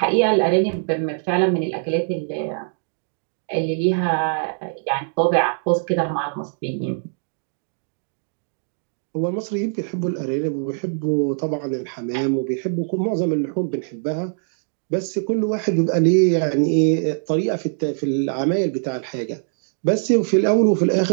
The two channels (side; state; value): left; silent; digital silence